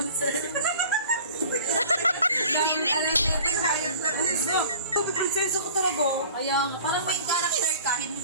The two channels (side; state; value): both; inverted; correlation -0.45